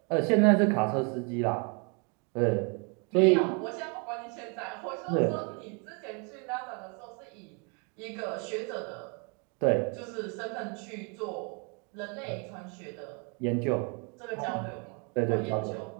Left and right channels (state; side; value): quieter; left; 35.0 dB